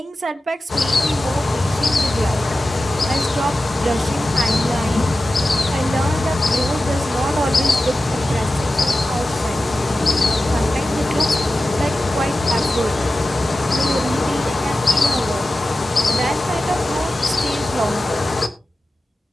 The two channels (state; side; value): normal; both; correlation 0.94